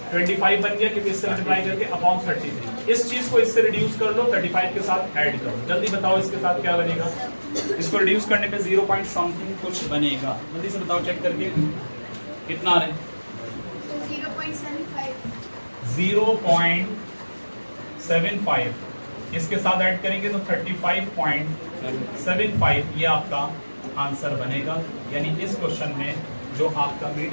25 बन गया क्योंकि इससे मल्टीप्लाई करके अपॉन 33। इस चीज को इससे रिड्यूस कर लो, 35 के साथ ऐड करो। जल्दी बताओ इसके साथ क्या बनेगा? इसको रिड्यूस करने पे 0 पॉइंट समथिंग कुछ बनेगा। जल्दी से बताओ चेक करके कितना आ रहा है? 0.75। इसके साथ ऐड करेंगे तो 35.75 ये आपका आंसर बनेगा। यानी इस क्वेश्चन में जो आपका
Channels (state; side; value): inverted; both; correlation -1.00